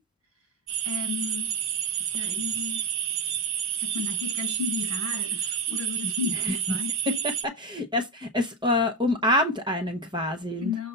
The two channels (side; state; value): both; normal; correlation 0.12